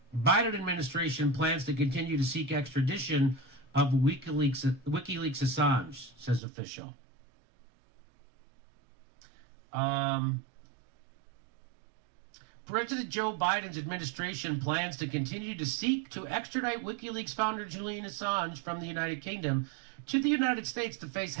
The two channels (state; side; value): drops out; left; at 6.4 s